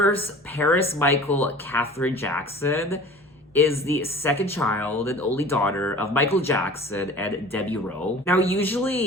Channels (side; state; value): both; normal; correlation 0.43